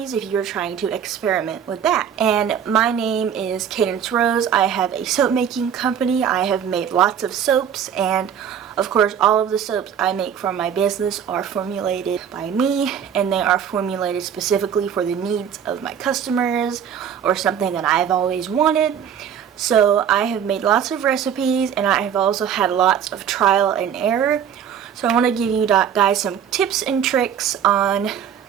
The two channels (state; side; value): quieter; left; 8.5 dB